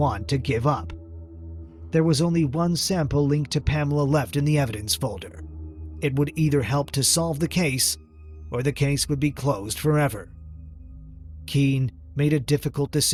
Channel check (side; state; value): both; identical; correlation 1.00